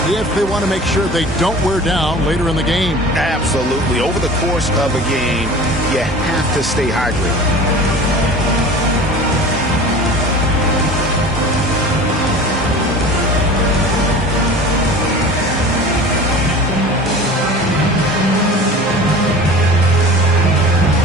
if they want to make sure they don't wear down later in the game. Absolutely. Over the course of a game, you have to stay hydrated.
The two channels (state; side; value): normal; both; correlation 0.39